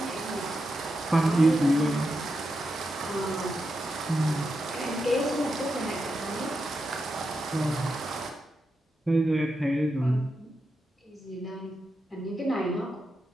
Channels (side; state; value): both; normal; correlation 0.87